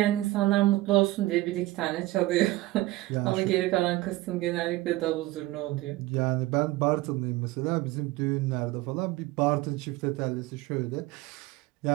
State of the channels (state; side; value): quieter; left; 18.2 dB